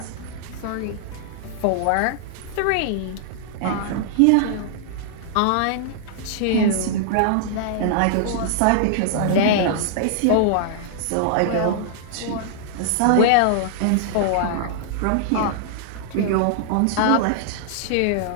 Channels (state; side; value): different; both; correlation -0.01